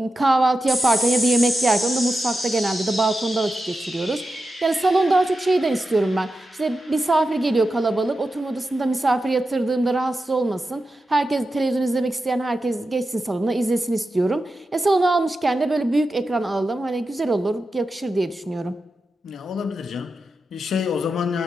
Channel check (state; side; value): normal; both; correlation 0.90